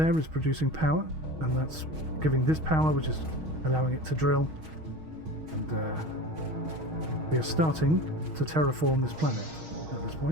is producing power, and that's giving this power, which is allowing it to drill. And we are starting to terraform this planet at this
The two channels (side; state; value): left; late; 6.4 ms